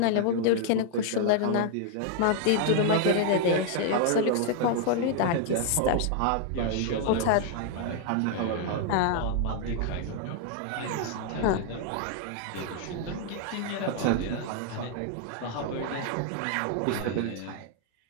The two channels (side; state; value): both; different; correlation 0.00